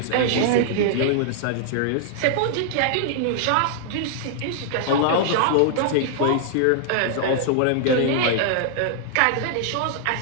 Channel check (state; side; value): different; both; correlation -0.01